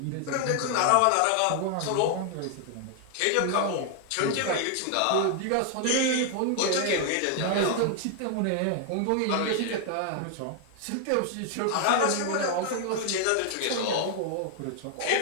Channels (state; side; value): different; both; correlation 0.00